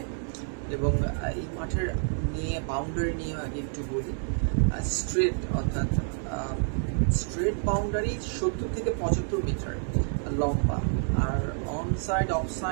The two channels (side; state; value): left; silent; 59 dB below the other